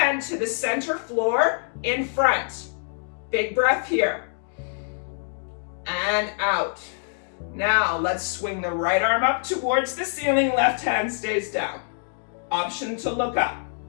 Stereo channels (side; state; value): right; silent; digital silence